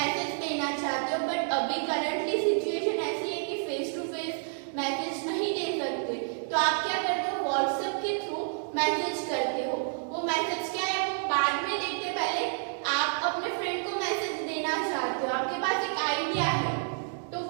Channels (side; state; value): left; silent; 57 dB below the other